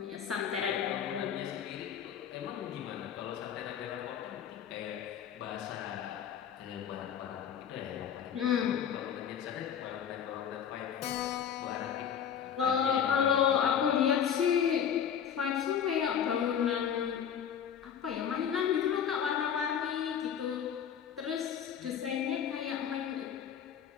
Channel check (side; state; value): right; quieter; 8.4 dB